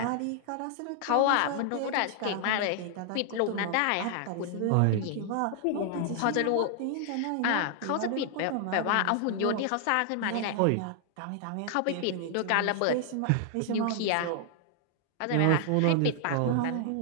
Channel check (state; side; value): different; both; correlation 0.00